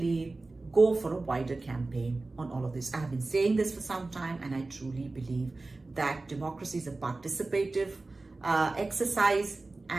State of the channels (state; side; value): quieter; left; 3.3 dB